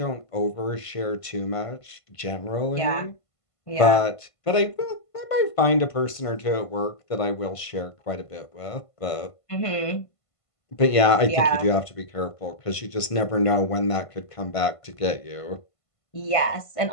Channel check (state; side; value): late; right; 1.5 ms